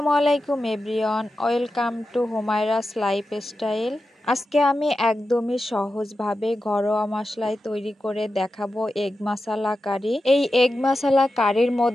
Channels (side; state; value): both; normal; correlation 0.91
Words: আলাইকুম এভরিওয়ান, ওয়েলকাম টু হুমায়রাস লাইফস্টাইল। আজকে আমি একদমই সহজভাবে ঘরোয়া মশলায় তৈরি করে দেখাবো এগ মশলা কারি। এই এগ মশলা কারির